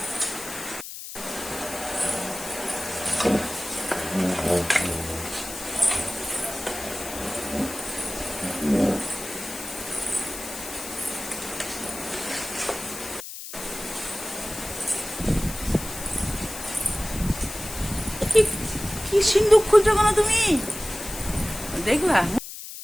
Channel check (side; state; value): left; noise; hiss, 10 dB below the sound